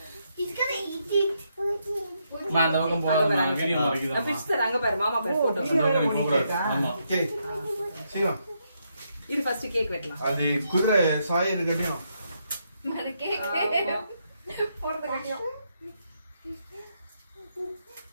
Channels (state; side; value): inverted; both; correlation -0.79